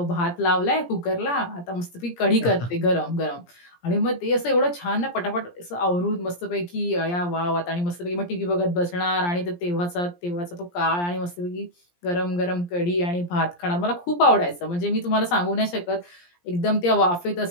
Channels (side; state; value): right; late; 17 ms